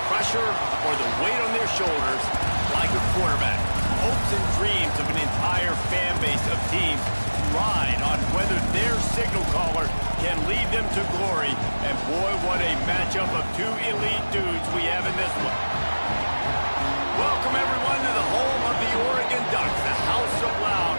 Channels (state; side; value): inverted; both; correlation -1.00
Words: pressure or the weight on their shoulders like a quarterback. Hopes and dreams of an entire fan base of teams ride on whether their signal caller can lead them to glory. And boy, what a matchup of two elite dudes we have in this one. Welcome everyone to the home of the Oregon Ducks, the House of Loud,